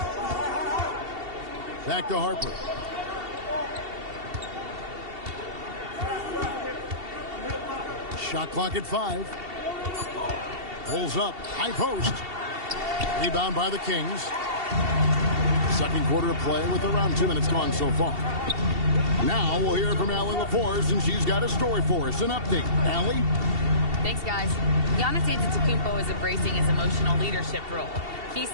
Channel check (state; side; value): late; left; 2.7 ms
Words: Back to Harper. Shot clock at 5. Pulls up. High post. Rebound by the Kings. Second quarter of play with around 2 minutes gone so far. Now we'll hear from Allie LaForce, and she's got a story for us. An update. Allie? Thanks, guys. Giannis Antetokounmpo is embracing his emotional leadership role. He